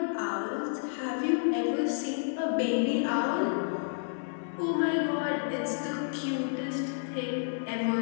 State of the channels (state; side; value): silent; right; digital silence